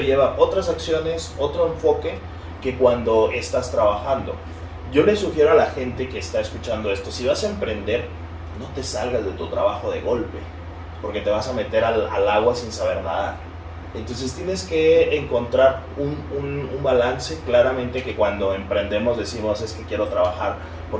lleva otras acciones, otro enfoque que cuando estás trabajando. Yo le sugiero a la gente que está escuchando esto, si vas a emprender, no te salgas de tu trabajo de golpe, porque te vas a meter al agua sin saber nadar. Entonces tienes que encontrar un balance. Claramente que cuando emprendemos decimos, es que quiero trabajar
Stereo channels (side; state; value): both; identical; correlation 1.00